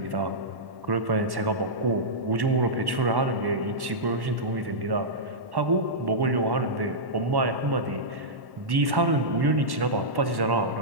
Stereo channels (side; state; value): left; late; 1.1 ms